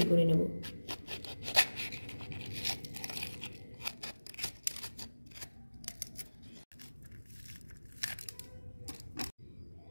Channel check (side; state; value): both; inverted; correlation -1.00